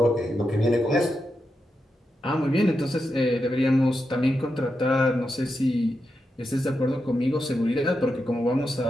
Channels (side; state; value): both; normal; correlation 0.87